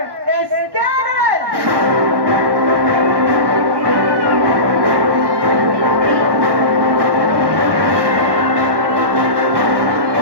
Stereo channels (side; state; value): left; late; 1.1 ms